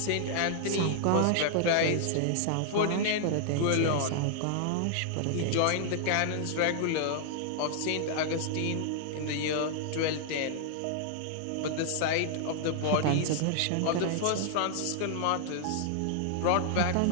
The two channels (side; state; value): both; different; correlation -0.01